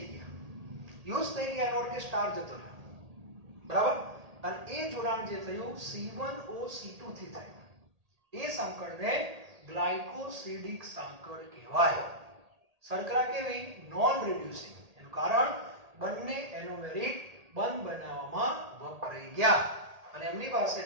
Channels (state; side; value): late; left; 1.8 ms